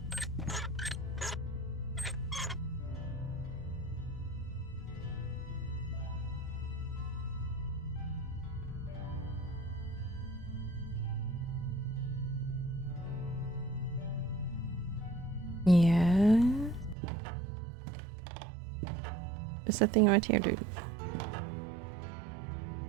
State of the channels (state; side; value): drops out; left; at 16.9 s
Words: Yeah. There's a thing right here, dude.